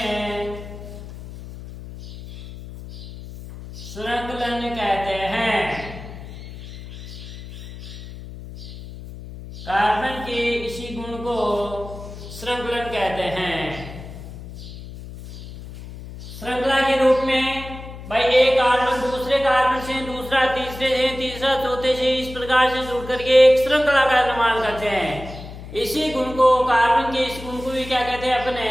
श्रृंखलन कहते हैं। कार्बन के इसी गुण को श्रृंखलन कहते हैं। श्रृंखला के रूप में भाई एक कार्बन दूसरे कार्बन से, दूसरा तीसरे से, तीसरा चौथे से, इस प्रकार से जुड़ करके एक श्रृंखला का निर्माण करते हैं। इसी गुण को, कार्बन के इस गुण को भी क्या कहते हैं अपने?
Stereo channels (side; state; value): left; noise; hum, 13 dB below the sound